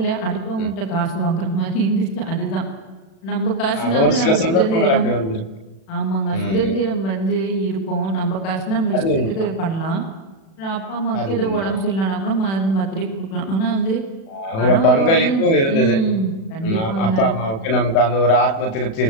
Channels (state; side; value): late; right; 36 ms